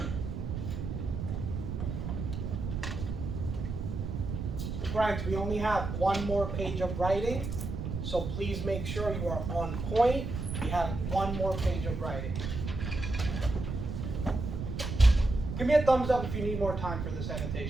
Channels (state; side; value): noise; right; rumble, 4 dB below the sound